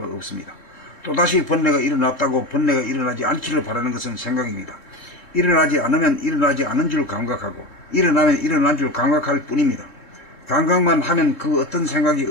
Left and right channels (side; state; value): right; late; 3.4 ms